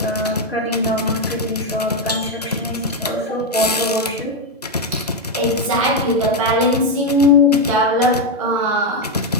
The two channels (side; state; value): both; normal; correlation 0.05